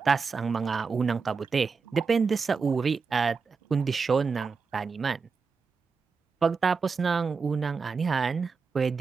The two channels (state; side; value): quieter; left; 5.0 dB